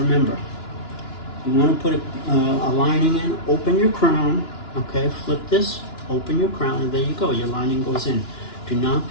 you want to put a lining in, open your crown, okay, flip this, open your crown, and there you go, your lining goes in. Do not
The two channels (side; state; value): right; late; 2.9 ms